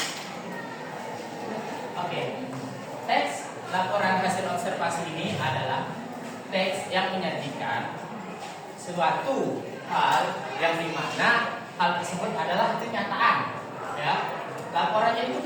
Oke, teks laporan hasil observasi ini adalah teks yang menyajikan suatu hal yang dimana hal tersebut adalah kenyataan, ya. Laporannya itu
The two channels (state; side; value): identical; both; correlation 1.00